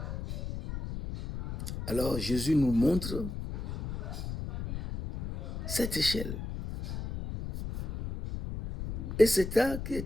Alors Jésus nous montre cette échelle. Et c'est ça qui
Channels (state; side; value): noise; left; rumble, 6 dB below the sound